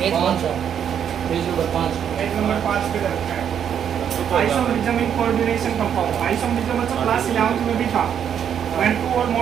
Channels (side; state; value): left; quieter; 8.7 dB